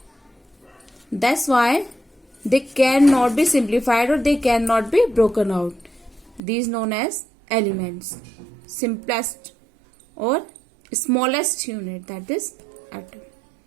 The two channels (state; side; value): drops out; left; at 6.4 s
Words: That's why they cannot be simplified or they cannot be broken out. These known as elements. Simplest or smallest unit, that is atom.